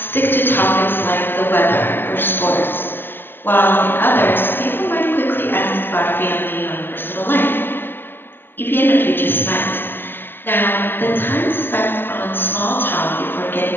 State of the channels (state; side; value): late; right; 0.099 ms